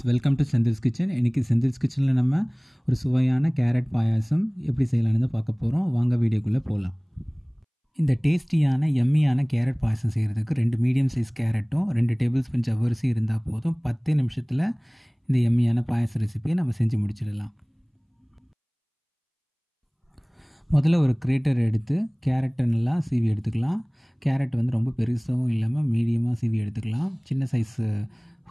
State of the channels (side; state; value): both; identical; correlation 1.00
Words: welcome to Senthil's kitchen. இன்றைக்கி செந்தில்ஸ் கிச்சனில் நம்ம ஒரு சுவையான கேரட் பாயாசம் எப்படி செய்யலான்னு பார்க்க போகிறோம். வாங்க வீடியோக்குள்ளே போகலாம். இந்த டேஸ்டியான எம்மியான கேரட் பாயாசம் செய்கிறதுக்கு 2 மீடியம் சைஸ் கேரட்டும் 2 டேபிள் ஸ்பூன் ஜவ்வரிசி இருந்தால் போதும். 10 நிமிஷத்தில் இந்த எம்மியான பாயாச ரெசிபியை நம்ம செஞ்சு முடிச்சிடலாம். முதல்ல ஒரு கிரேட்டர் எடுத்து கேரட்டை நல்லா சீவி எடுத்துக்கலாம். கேரட் வந்து ரொம்ப பெருசாகவும் இல்லாமல் மீடியமாக சீவி எடுத்துக்கலாம். சின்ன சைஸ்